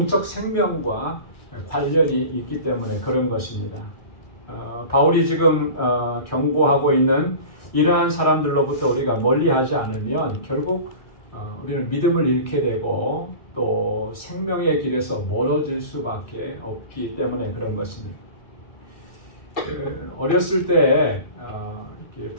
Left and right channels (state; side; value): late; right; 1.6 ms